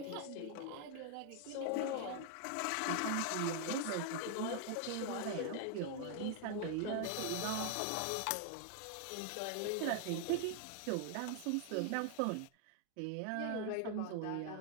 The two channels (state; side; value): different; both; correlation 0.00